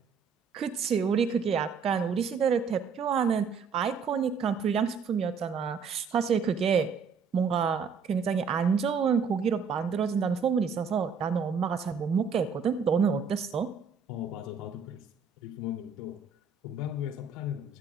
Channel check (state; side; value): quieter; left; 5.6 dB